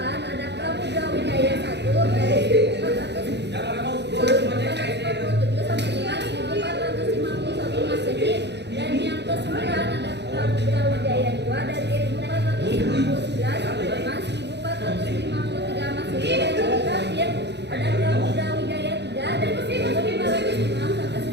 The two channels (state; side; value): late; left; 0.50 ms